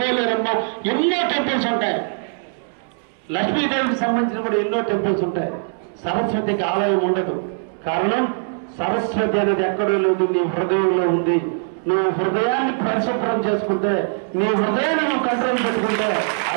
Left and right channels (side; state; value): left; silent; 65 dB below the other